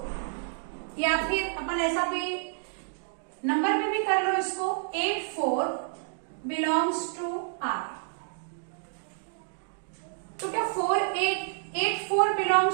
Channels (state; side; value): silent; left; digital silence